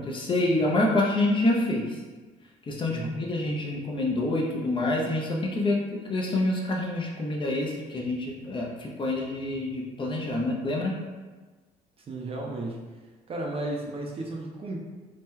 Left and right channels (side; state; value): both; normal; correlation 0.62